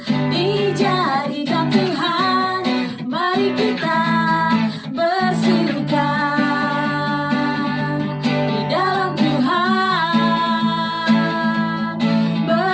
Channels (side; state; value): both; identical; correlation 1.00